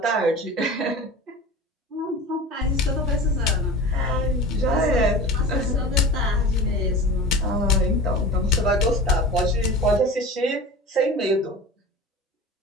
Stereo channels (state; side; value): normal; both; correlation 0.34